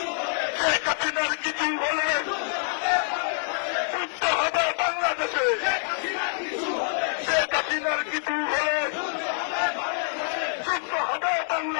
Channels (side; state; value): right; silent; digital silence